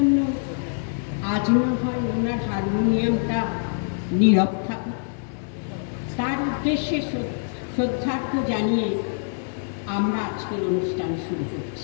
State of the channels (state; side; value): silent; right; 61 dB below the other